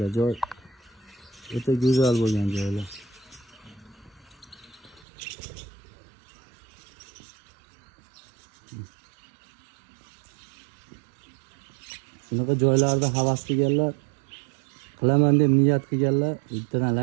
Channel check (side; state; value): left; drops out; at 5.1 s